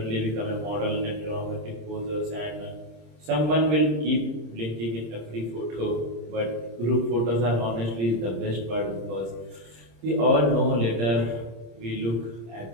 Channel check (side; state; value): left; late; 26 ms